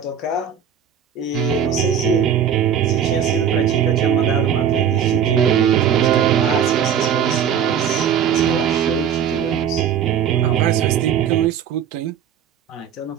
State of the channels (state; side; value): quieter; left; 8.4 dB